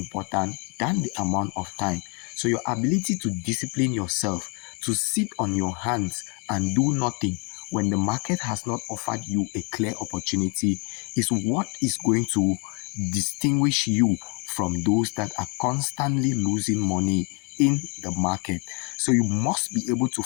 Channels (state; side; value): quieter; right; 35.2 dB